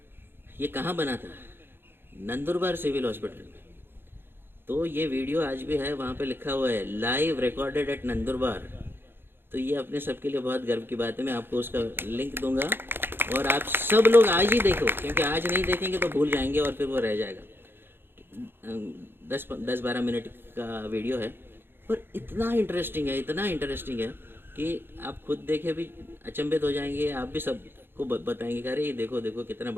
ये कहाँ बना था, नंदुरबार सिविल हॉस्पिटल में। तो ये वीडियो आज भी है, वहाँ पे लिखा हुआ है लाइव रिकॉर्डेड एट नंदुरबार। तो ये अपने सबके लिए बहुत गर्व की बात है। मैं आपको उसका लिंक दूंगा और आप सब लोग आज ही देखो, क्योंकि आज नहीं देखेंगे तो भूल जाएंगे और फिर वो रह जाएगा। 10-12 मिनट का वीडियो है, पर इतना इंटरेस्टिंग है, इतना इंटरेस्टिंग है कि आप खुद देखे भी अचंभित हो जाएंगे। आप भी सबको बताएंगे कि अरे ये देखो देखो कितना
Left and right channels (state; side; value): late; left; 0.10 ms